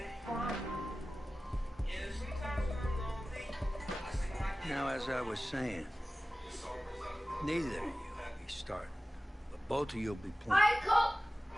Now, as I was saying, neither of you will be starting, but both of you will be playing.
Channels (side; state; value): both; normal; correlation 0.97